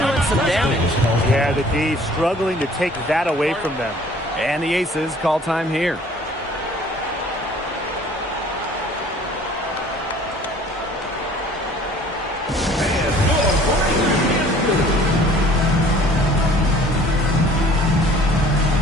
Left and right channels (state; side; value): normal; both; correlation 0.52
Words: some damage. Yeah, the D struggling to take that away from them. And the Aces call time here.